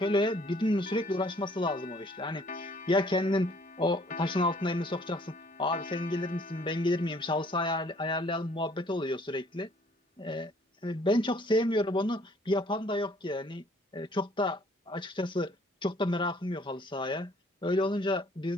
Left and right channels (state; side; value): normal; both; correlation 0.59